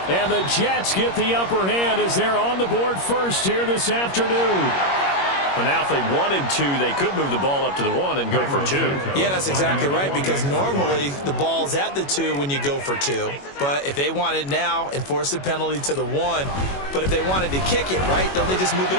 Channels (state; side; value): late; right; 21 ms